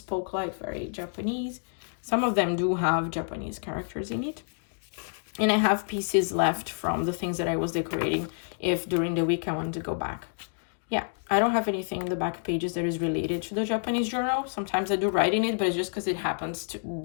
like very Japanese. Some of them do have Japanese characters in it. And I have pieces left from the things that I was decorating if during the week I wanted to go back. Yeah, I don't have anything in the back pages that is related to the Japanese journal. Sometimes I do write in it, but it's just because it happens to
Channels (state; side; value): silent; right; digital silence